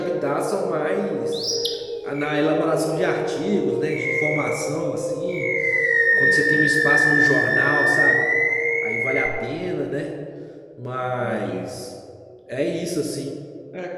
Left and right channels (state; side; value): identical; both; correlation 1.00